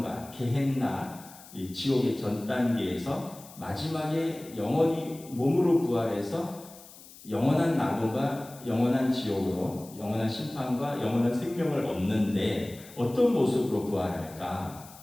게헨나 이 지옥의 전 단계에서 마지막에 영원히 몸으로 부활해서 영원한 낙원과 영원한 지옥으로 영원한 심판과 영원한 생명을 얻는데 어떤 모습으로 부활할까?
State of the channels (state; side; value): noise; left; hiss, 20 dB below the sound